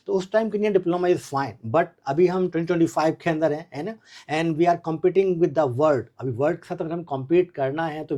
तो उस टाइम के लिए डिप्लोमा इज़ फाइन. बट अभी हम 2025 के अंदर हैं, है ना, and we are competing with the world. अभी वर्ल्ड के साथ अगर हम कॉम्पीट करना है तो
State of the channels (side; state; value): both; identical; correlation 1.00